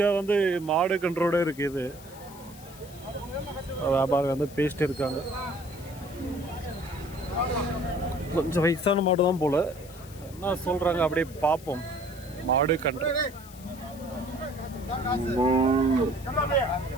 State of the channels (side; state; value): left; noise; hiss, 20 dB below the sound